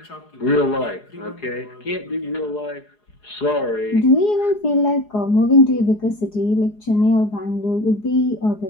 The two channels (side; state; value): right; late; 4.8 ms